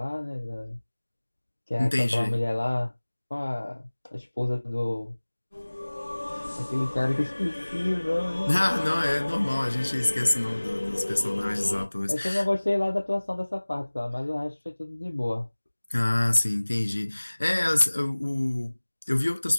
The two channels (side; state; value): both; inverted; correlation -1.00